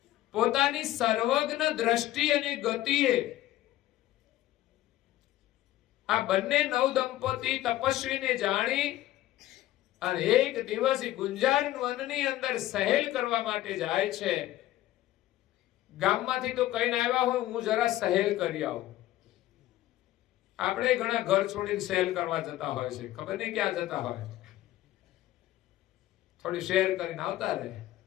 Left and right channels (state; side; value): quieter; right; 15.0 dB